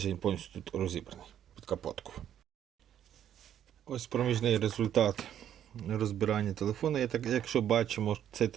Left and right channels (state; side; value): quieter; left; 10.3 dB